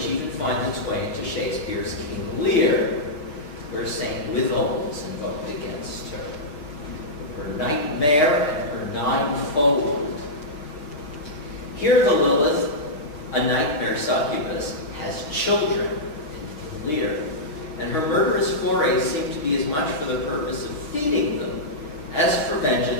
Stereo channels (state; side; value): late; right; 6.5 ms